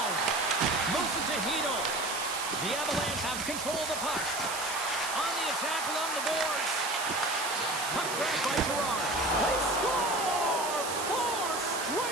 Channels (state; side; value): noise; right; hiss, 5 dB below the sound